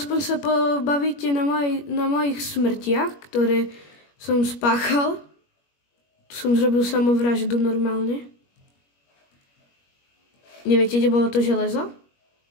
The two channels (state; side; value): late; right; 21 ms